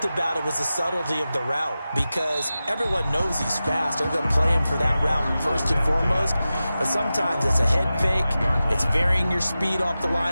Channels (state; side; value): inverted; both; correlation -0.94